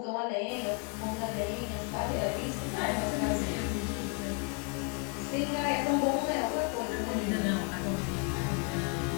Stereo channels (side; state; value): right; quieter; 36.3 dB